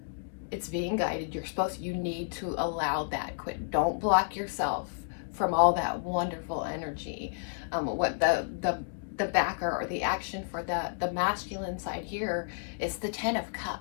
it's being guided. You need to allow that. Don't block yourself from all that wonderful energy. What the backer or the action for the masculine side here is the Ten of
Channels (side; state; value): right; silent; digital silence